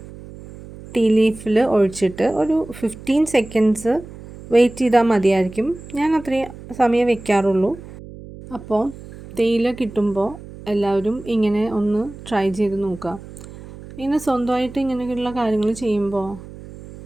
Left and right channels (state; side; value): noise; right; hum, 16 dB below the sound